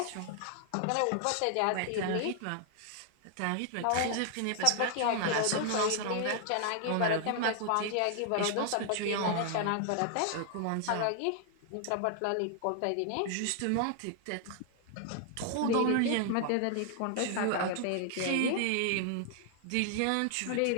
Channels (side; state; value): both; different; correlation 0.00